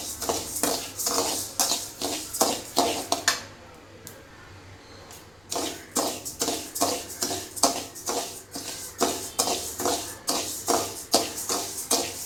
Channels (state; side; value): noise; left; rumble, 28 dB below the sound